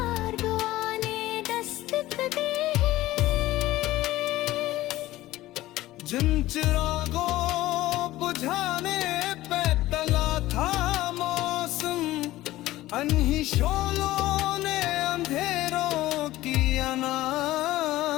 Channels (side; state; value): right; quieter; 16.5 dB